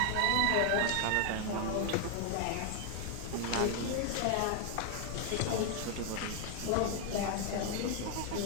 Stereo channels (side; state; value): both; different; correlation 0.00